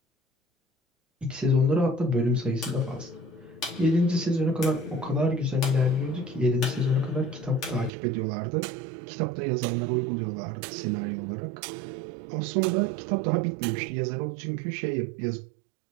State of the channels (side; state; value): left; drops out; at 7.9 s